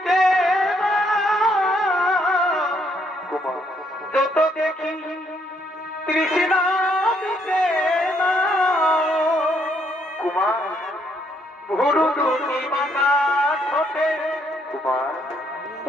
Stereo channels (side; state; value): both; normal; correlation 0.71